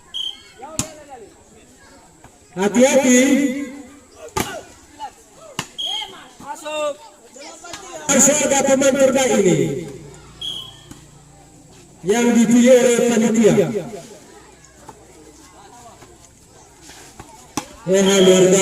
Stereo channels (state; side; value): identical; both; correlation 1.00